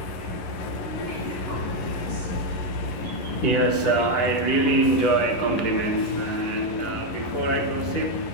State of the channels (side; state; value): right; late; 11 ms